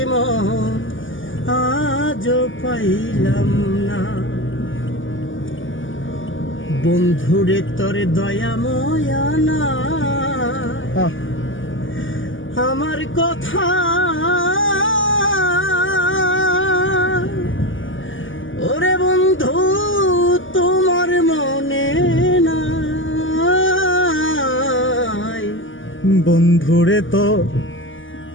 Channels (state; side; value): late; right; 0.57 ms